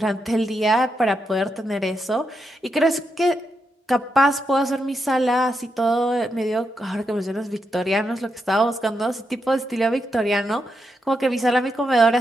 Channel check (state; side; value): normal; both; correlation 0.84